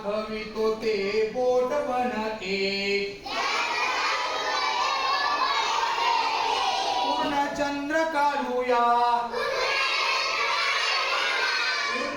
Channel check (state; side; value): identical; both; correlation 1.00